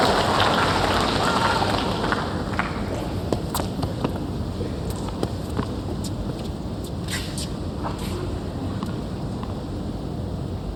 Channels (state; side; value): identical; both; correlation 1.00